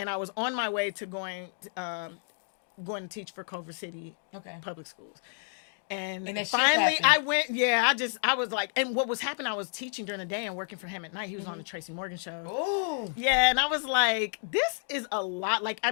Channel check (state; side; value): silent; right; 58 dB below the other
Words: I was on my way to going to teach for Culver City public schools. And finally I went, I was like, and what was happening, I was teaching during the day and working for him at night. He was on the Tracy Morgan show. Oh. Yeah, and I was like, this is a lot. Like, I